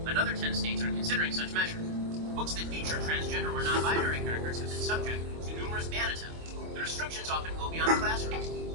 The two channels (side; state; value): left; late; 25 ms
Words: Another 10 states are considering such measures. Books that feature transgender or non-binary characters have been subject to numerous ban attempts. The restrictions often go beyond classrooms.